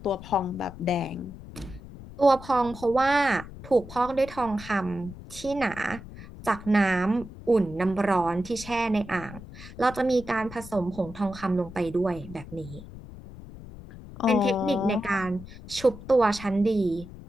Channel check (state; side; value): noise; left; rumble, 15 dB below the sound